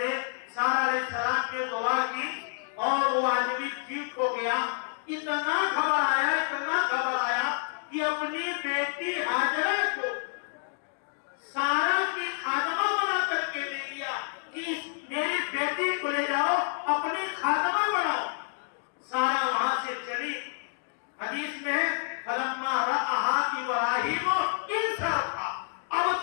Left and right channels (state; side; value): silent; right; digital silence